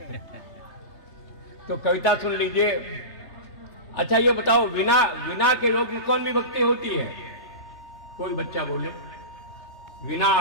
तो कविता सुन लीजिए। अच्छा ये बताओ, विना के योग में कौन विभक्ति होती है? कोई बच्चा बोले। विना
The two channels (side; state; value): right; late; 3.2 ms